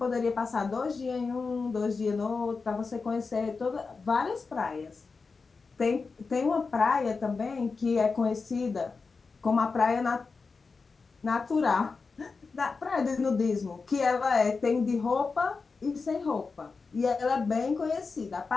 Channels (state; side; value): quieter; right; 4.5 dB